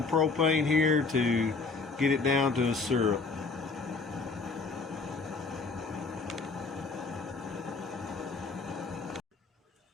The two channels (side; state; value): right; quieter; 4.1 dB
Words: propane here to get it down to a syrup.